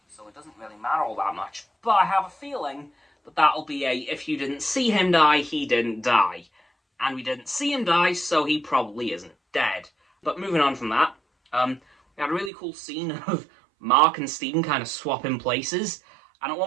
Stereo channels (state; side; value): drops out; left; at 12.5 s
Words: so it doesn't really matter all that much. But I have a feeling that that'll be if you didn't see him die, he didn't die. And we didn't see him die, so he probably isn't dead. But moving on from that, we had a really cool scene of Mark and Stephen kind of swapping places. And at